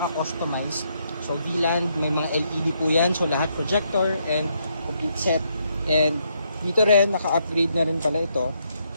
So V-Land, may mga LED po yan. So lahat projector and complete set. And dito rin, naka-upgrade na rin pala ito.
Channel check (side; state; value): both; inverted; correlation -0.76